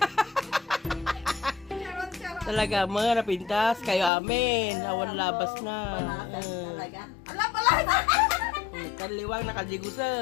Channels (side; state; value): right; drops out; at 4.1 s